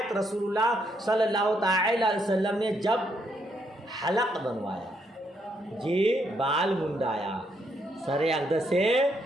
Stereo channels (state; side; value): normal; both; correlation 0.75